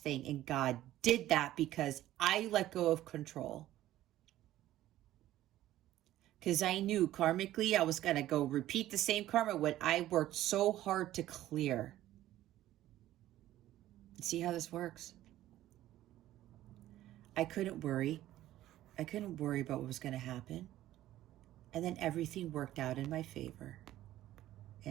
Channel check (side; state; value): left; quieter; 14.1 dB